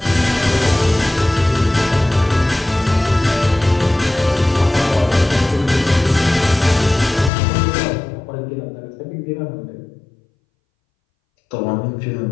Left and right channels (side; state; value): right; drops out; at 7.3 s